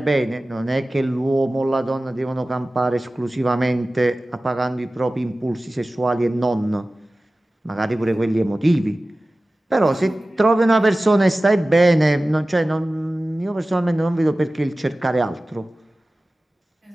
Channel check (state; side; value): normal; both; correlation 0.97